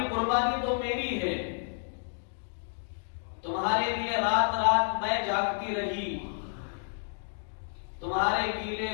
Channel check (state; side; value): silent; right; digital silence